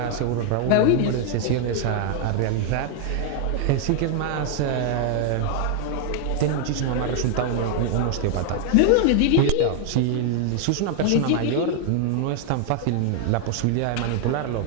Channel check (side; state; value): both; different; correlation 0.00